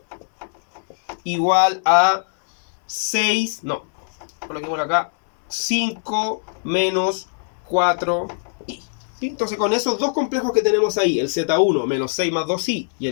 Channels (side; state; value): right; silent; digital silence